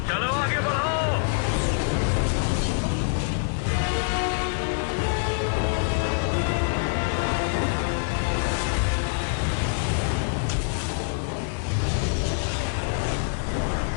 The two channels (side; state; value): right; silent; 61 dB below the other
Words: चलो आगे बढ़ो।